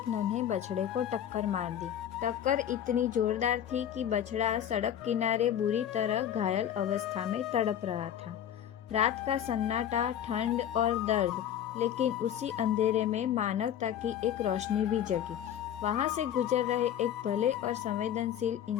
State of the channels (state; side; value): quieter; right; 10.0 dB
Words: नन्हे बछड़े को टक्कर मार दी। टक्कर इतनी जोरदार थी कि बछड़ा सड़क किनारे बुरी तरह घायल अवस्था में तड़प रहा था। रात का सन्नाटा, ठंड और दर्द, लेकिन उसी अंधेरे में मानवता की एक रोशनी भी जगी। वहां से गुजर रहे एक भले और संवेदनशील